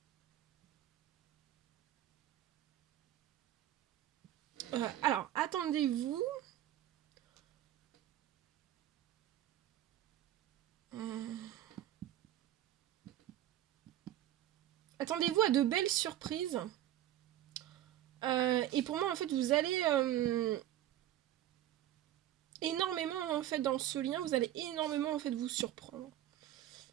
attendez-vous attendez-vous à de belles surprises. Et pour moi, en fait, vous allez énormément en fait dans ce lien, vous allez énormément en fait vous surprendre.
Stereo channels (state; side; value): quieter; left; 12.7 dB